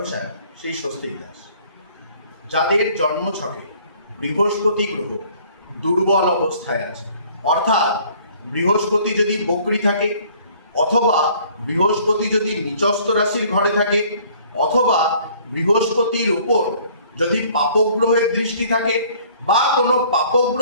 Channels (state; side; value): inverted; both; correlation -0.56